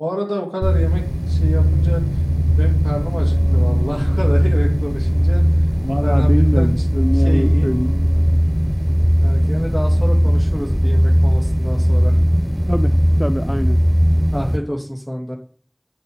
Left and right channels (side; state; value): both; identical; correlation 1.00